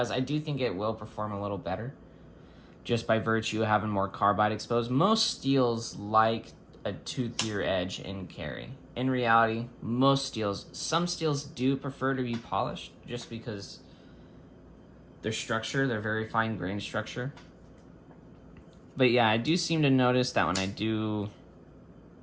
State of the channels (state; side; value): identical; both; correlation 1.00